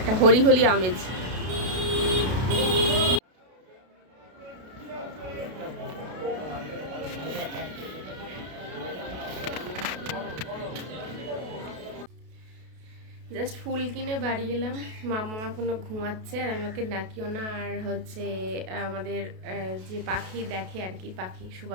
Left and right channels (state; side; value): late; left; 32 ms